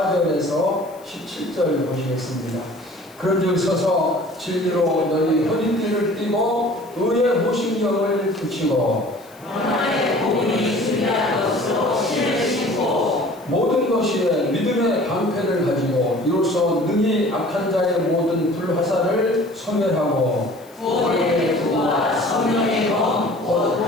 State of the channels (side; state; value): left; noise; hiss, 26 dB below the sound